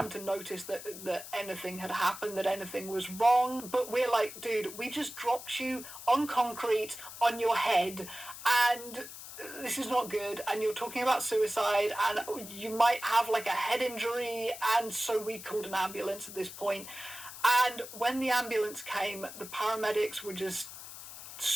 to notice that anything had happened, that anything was wrong. But we're like, dude, we just dropped you on concrete on your head, and this is not good, and you're talking about suicide, and you might have like a head injury. And so we called an ambulance at this point. And when the ambulance came, the paramedics were just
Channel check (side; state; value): left; noise; hiss, 13 dB below the sound